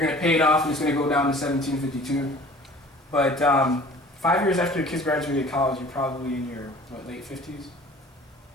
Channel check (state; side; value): normal; both; correlation 0.47